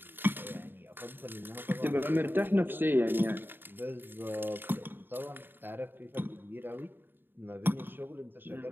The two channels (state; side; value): late; left; 0.097 ms